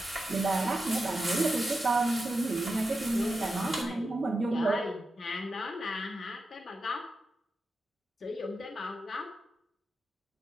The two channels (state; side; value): normal; both; correlation 0.89